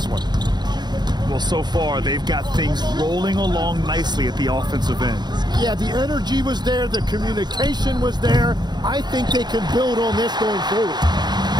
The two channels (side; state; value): left; late; 0.21 ms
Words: one? Well, so far they've got things rolling along nicely at the offensive end. Yeah, the energy was there. The communication was there. I think they can build on this going forward.